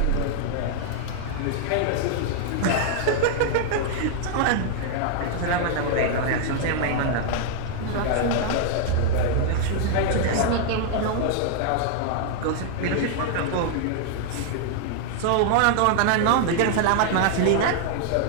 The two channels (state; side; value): different; both; correlation 0.00